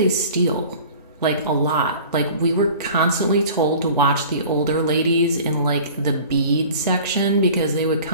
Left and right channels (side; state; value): both; inverted; correlation -0.44